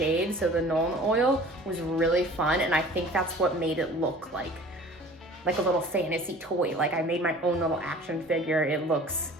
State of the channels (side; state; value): both; normal; correlation 0.46